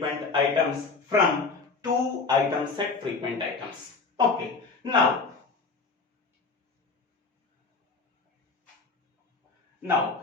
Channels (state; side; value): quieter; right; 4.3 dB